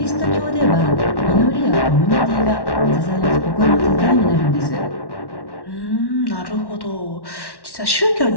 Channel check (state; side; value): late; right; 1.1 ms